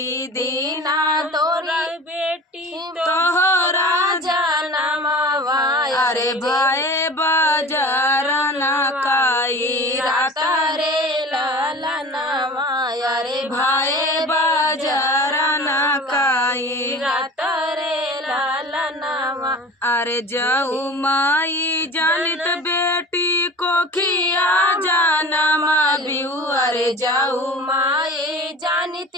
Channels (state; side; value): normal; both; correlation 0.37